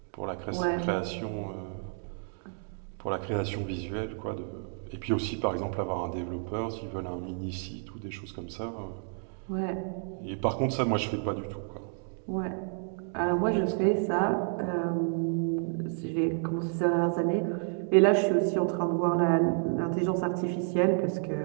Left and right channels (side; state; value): left; silent; 58 dB below the other